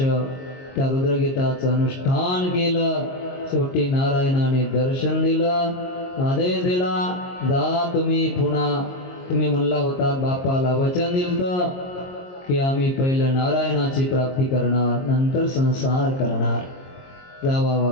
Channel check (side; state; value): right; late; 22 ms